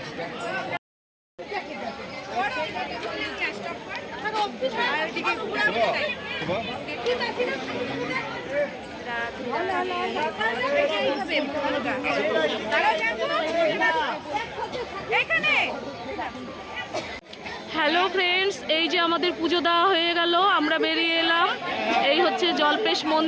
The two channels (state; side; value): identical; both; correlation 1.00